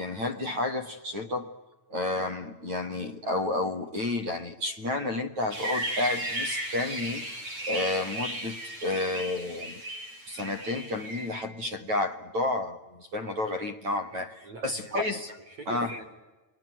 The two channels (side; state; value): left; late; 9.0 ms